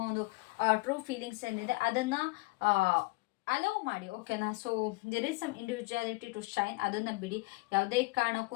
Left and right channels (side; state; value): right; quieter; 23.5 dB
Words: ಒಂದು ಟ್ರೂ ಫೀಲಿಂಗ್ಸ್ ಏನಿದೆ ಅದನ್ನು ಅಲೋ ಮಾಡಿ, ಓಕೆನಾ. So there is some individuality to shine, ಅದನ್ನು ಬಿಡಿ. ಯಾವುದೇ